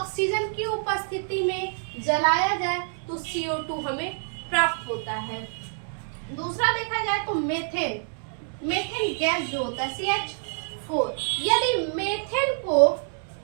की उपस्थिति में जलाया जाए तो CO2 हमें प्राप्त होता है। दूसरा देखा जाए तो मेथेन, मेथेन गैस जो होता है CH4, यदि मेथेन को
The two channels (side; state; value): left; silent; 60 dB below the other